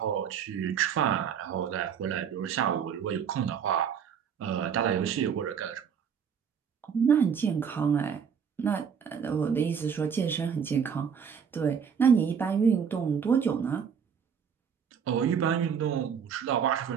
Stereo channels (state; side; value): quieter; left; 7.3 dB